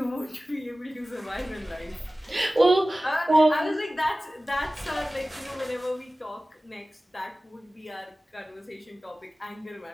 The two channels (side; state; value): both; normal; correlation 0.97